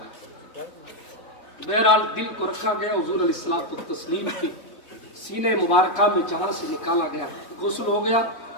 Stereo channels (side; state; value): right; late; 3.6 ms